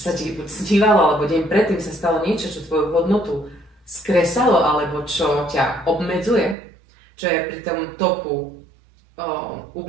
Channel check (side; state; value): left; drops out; at 6.6 s